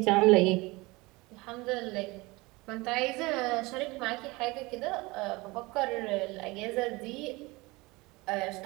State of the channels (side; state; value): left; quieter; 23.2 dB